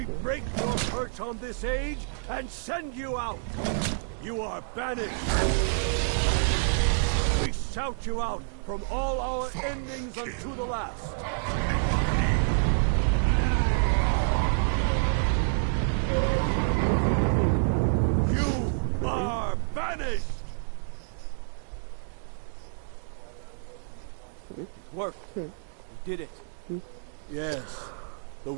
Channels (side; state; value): left; silent; 59 dB below the other